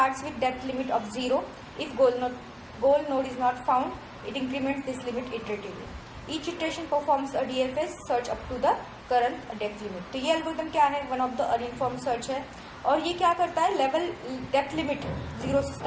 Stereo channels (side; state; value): both; identical; correlation 1.00